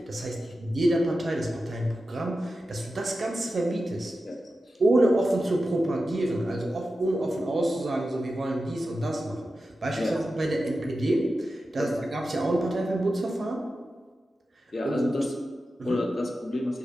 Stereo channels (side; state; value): both; normal; correlation 0.92